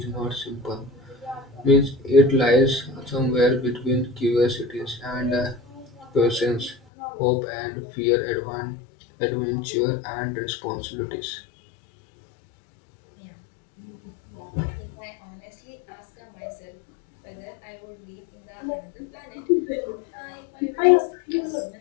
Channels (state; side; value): drops out; right; at 6.8 s